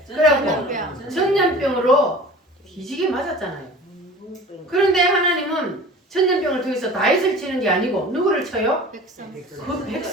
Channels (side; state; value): both; normal; correlation 0.41